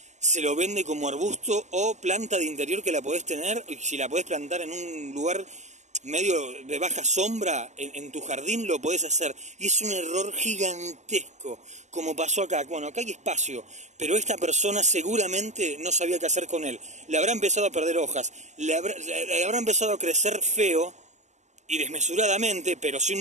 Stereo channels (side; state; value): left; late; 0.34 ms